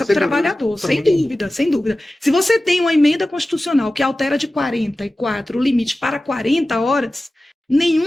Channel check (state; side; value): normal; both; correlation 0.95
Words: para o trabalhador, sem dúvida, sem dúvida. Se você tem uma emenda constitucional que altera de 44 o limite para 40 horas,